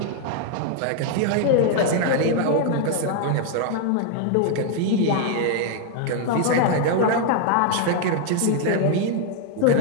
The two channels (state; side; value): different; both; correlation 0.00